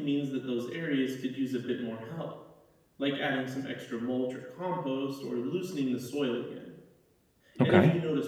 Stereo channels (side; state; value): both; identical; correlation 1.00